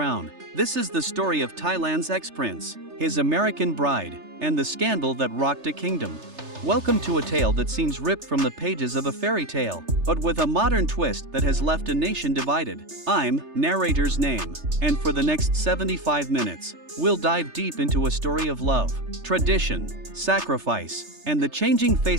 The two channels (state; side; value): late; left; 3.3 ms